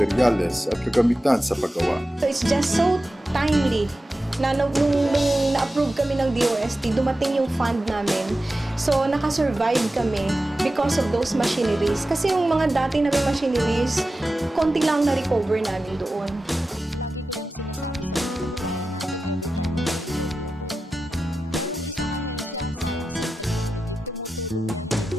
at kagamitan sa paggawa. So it's just so timely na nung na-approve kami ng DOST, dumating yung fund namin. So nakasurvive kami because of those machineries. Kasi yung mga dati namin machineries, konti lang na-recover namin doon.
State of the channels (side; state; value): both; normal; correlation 0.93